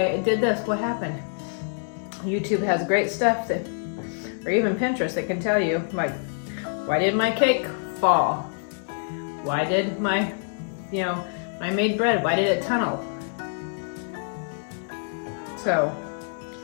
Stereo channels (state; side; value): silent; right; digital silence